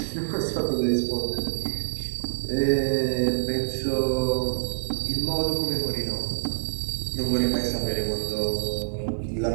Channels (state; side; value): silent; left; 61 dB below the other